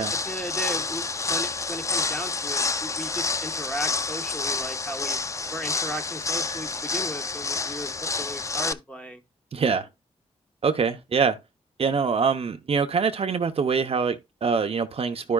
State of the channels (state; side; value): normal; both; correlation 0.32